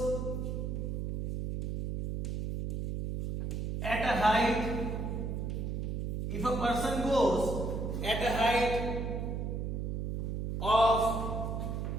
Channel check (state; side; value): noise; right; hum, 2 dB below the sound